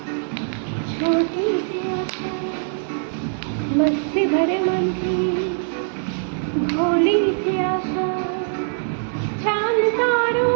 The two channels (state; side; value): silent; left; 64 dB below the other